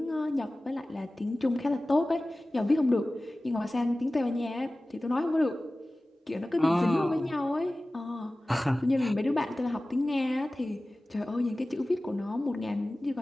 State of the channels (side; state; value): both; normal; correlation 0.97